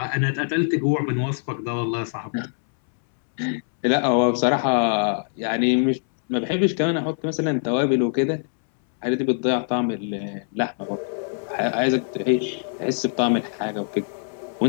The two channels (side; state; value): right; silent; 63 dB below the other